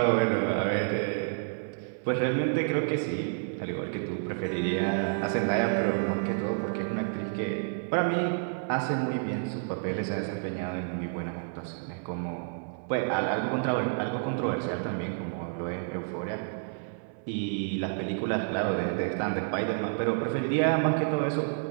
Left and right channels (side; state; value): left; silent; 58 dB below the other